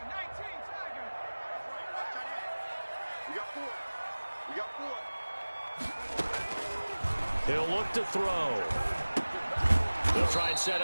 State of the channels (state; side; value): inverted; both; correlation -1.00